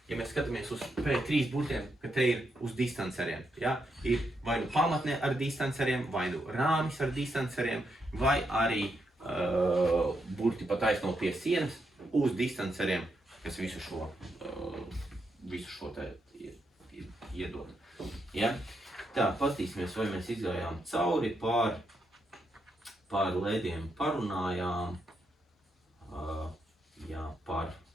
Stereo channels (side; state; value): both; normal; correlation 0.81